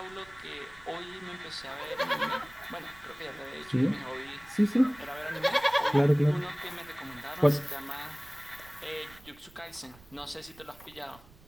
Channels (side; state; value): right; noise; rumble, 24 dB below the sound